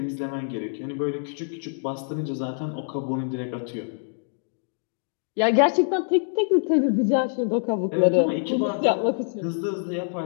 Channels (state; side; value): silent; right; digital silence